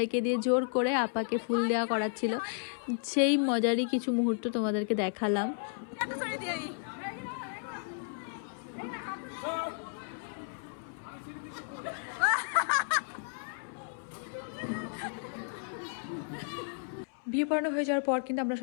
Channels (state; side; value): silent; right; 56 dB below the other